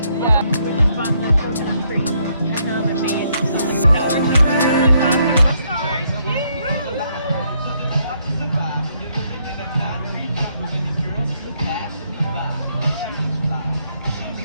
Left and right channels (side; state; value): both; inverted; correlation -0.72